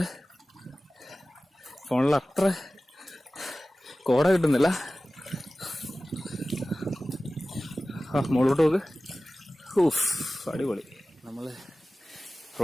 ഫോണിൽ അത്ര കോട കിട്ടുന്നില്ല. മുകളിലോട്ട് നോക്ക്. അടിപൊളി. നമ്മൾ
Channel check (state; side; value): normal; both; correlation 0.97